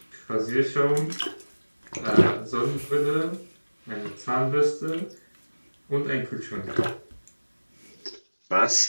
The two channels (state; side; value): inverted; both; correlation -1.00